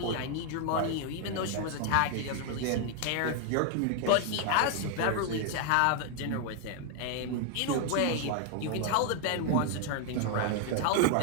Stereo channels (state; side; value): different; both; correlation 0.00